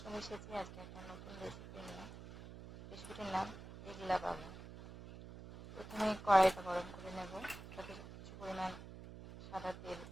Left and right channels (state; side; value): noise; right; hum, 13 dB below the sound